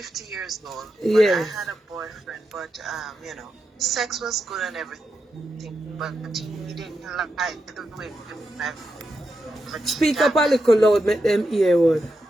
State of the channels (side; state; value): both; normal; correlation 0.86